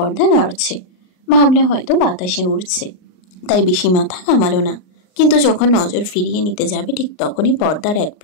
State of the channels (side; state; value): right; late; 38 ms